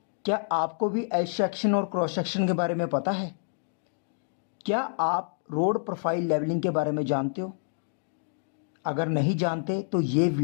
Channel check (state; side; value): silent; right; digital silence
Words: क्या आपको भी एल सेक्शन और क्रॉस सेक्शन के बारे में पता है? क्या आप रोड प्रोफाइल लेवलिंग के बारे में जानते हो? अगर नहीं जानते तो ये